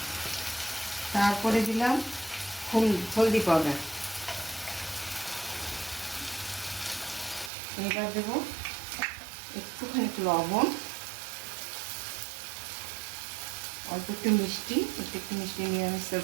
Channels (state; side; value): drops out; left; at 7.5 s